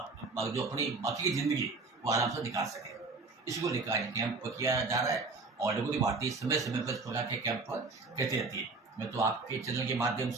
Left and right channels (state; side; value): quieter; left; 3.9 dB